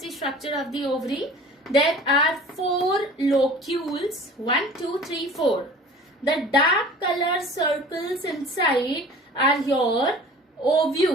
the structure of the ovary. There are 4 locules. 1, 2, 3, 4. The dark color circles inside are your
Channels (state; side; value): normal; both; correlation 0.44